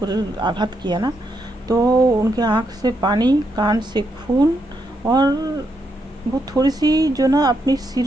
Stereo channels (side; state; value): both; normal; correlation 0.80